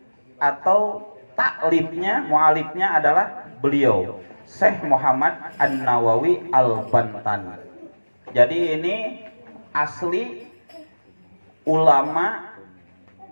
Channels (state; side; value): inverted; both; correlation -1.00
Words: atau taklifnya, mualifnya adalah beliau Syekh Muhammad An-Nawawi Al-Bantani. Jadi ini asli ulama,